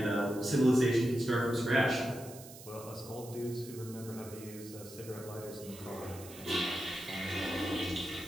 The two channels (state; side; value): noise; right; hiss, 16 dB below the sound